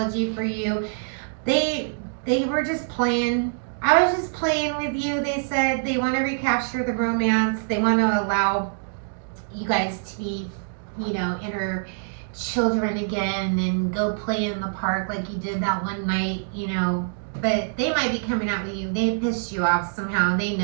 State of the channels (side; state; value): left; silent; digital silence